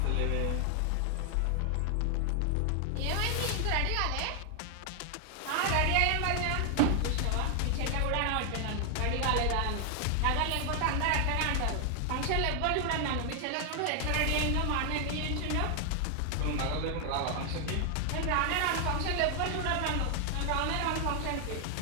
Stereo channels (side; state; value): both; different; correlation 0.00